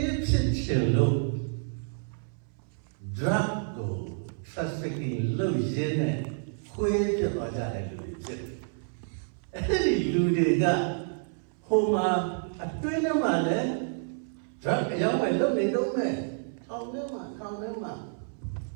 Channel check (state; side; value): silent; left; 58 dB below the other